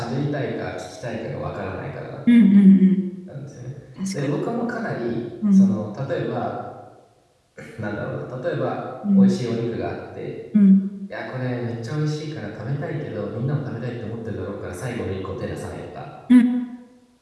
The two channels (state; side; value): identical; both; correlation 1.00